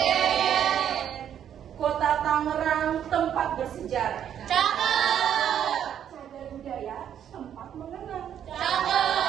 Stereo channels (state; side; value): quieter; left; 9.5 dB